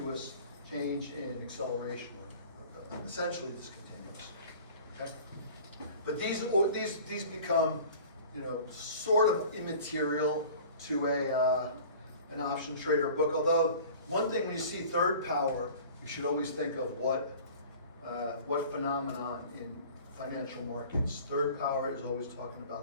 change in acceleration, or essentially discontinuous. Okay? But these become, sort of immaterial to an option trader book. Although one thing when you see third power, you should always think of what phenomenon in financial markets. Third power is always talking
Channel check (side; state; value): both; inverted; correlation -0.44